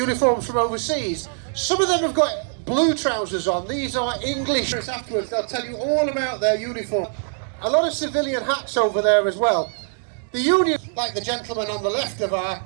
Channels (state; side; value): silent; left; digital silence